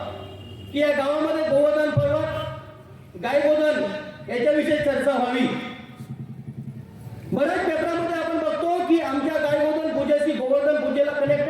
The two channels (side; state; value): both; identical; correlation 1.00